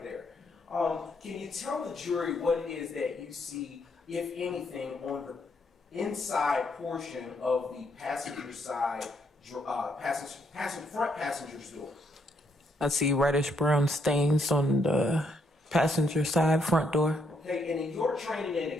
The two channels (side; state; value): both; normal; correlation 0.74